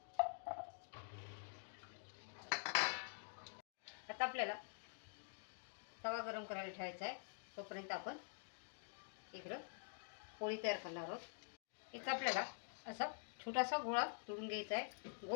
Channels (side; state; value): right; silent; digital silence